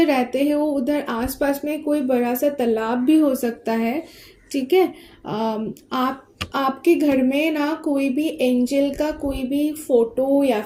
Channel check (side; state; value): both; identical; correlation 1.00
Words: रहते हो उधर आसपास में कोई बड़ा सा तालाब भी हो सकता है, ठीक है। आपके घर में ना कोई भी एंजल का कोई भी फ़ोटो या